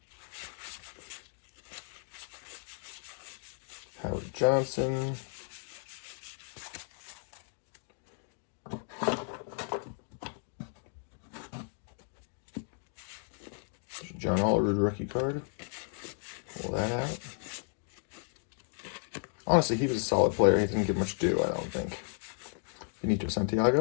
Howard Johnson. John Olerud rookie card. Pull that out. Honestly, he was a solid player. He didn't get much due, I don't think. Benito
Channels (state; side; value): silent; right; 55 dB below the other